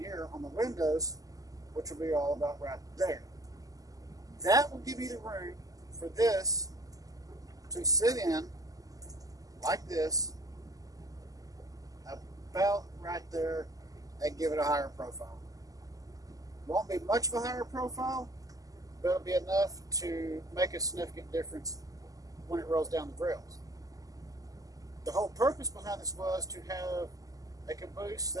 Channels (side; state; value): left; late; 0.17 ms